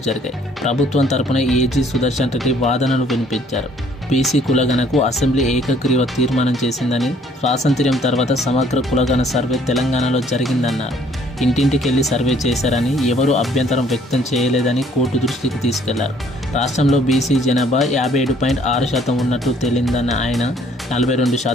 జరిగాయి. ప్రభుత్వం తరపున ఏజీ సుదర్శన్ రెడ్డి వాదనలు వినిపించారు. బీసీ కులగణకు అసెంబ్లీ ఏకగ్రీవ తీర్మానం చేసిందని, స్వాతంత్ర్యం తర్వాత సమగ్ర కులగణ సర్వే తెలంగాణలో జరిగిందన్నారు. ఇంటింటికెళ్లి సర్వే చేశారని, ఎవరూ అభ్యంతరం వ్యక్తం చేయలేదని కోర్టు దృష్టికి తీసుకెళ్లారు. రాష్ట్రంలో బీసీ జనాభా 57.6% ఉన్నట్లు తేలిందన్న ఆయన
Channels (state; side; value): normal; both; correlation 0.61